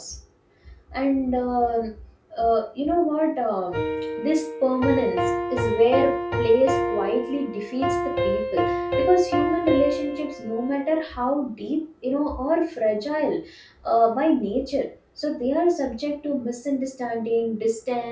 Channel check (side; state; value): both; identical; correlation 1.00